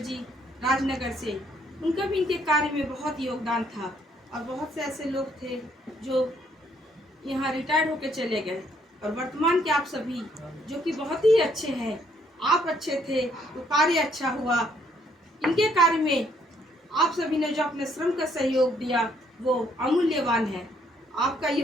राजनगर से, उनका भी इनके कार्य में बहुत योगदान था। और बहुत से ऐसे लोग थे जो यहाँ रिटायर्ड होकर चले गए, और वर्तमान के आप सभी जो कि बहुत ही अच्छे हैं। आप अच्छे थे तो कार्य अच्छा हुआ। इनके कार्य में आप सभी ने जो अपने श्रम का सहयोग दिया वो अमूल्यवान है। आपका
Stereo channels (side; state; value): both; normal; correlation 0.68